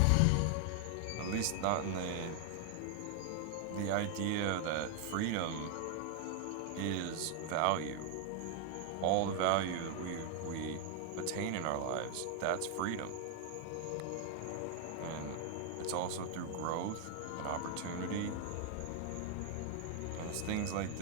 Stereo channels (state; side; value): different; both; correlation 0.00